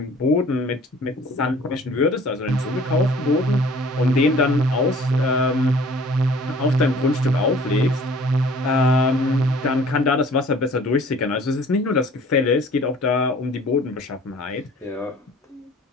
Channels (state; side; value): normal; both; correlation 0.51